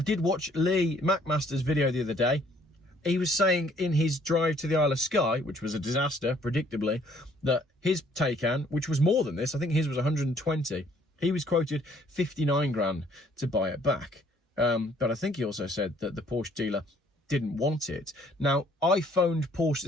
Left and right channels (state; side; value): normal; both; correlation 0.62